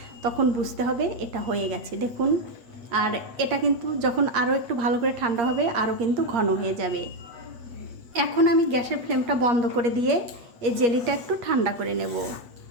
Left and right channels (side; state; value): left; late; 8.6 ms